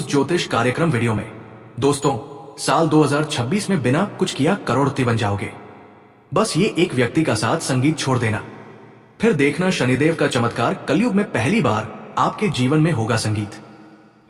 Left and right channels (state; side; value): identical; both; correlation 1.00